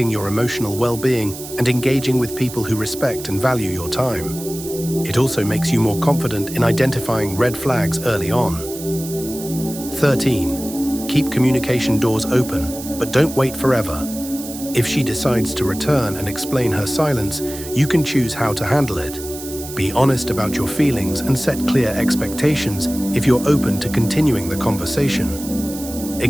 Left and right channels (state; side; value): noise; right; hiss, 12 dB below the sound